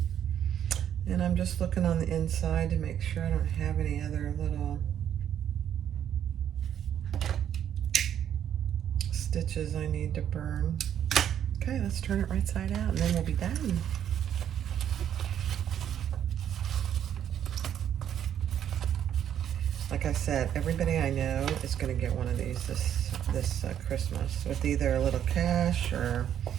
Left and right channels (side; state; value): left; quieter; 9.8 dB